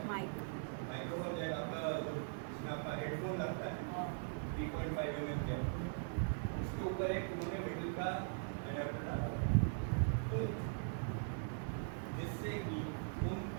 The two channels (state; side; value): silent; left; digital silence